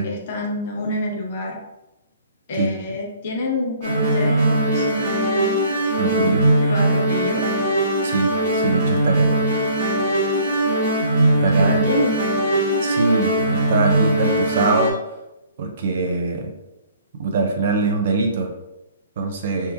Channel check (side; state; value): both; inverted; correlation -0.58